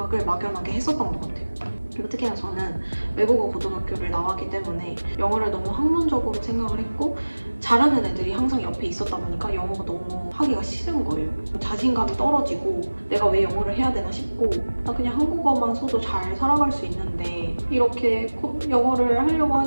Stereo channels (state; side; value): inverted; both; correlation -1.00